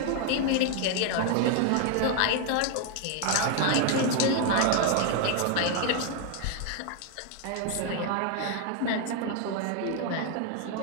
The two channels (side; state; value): both; different; correlation 0.01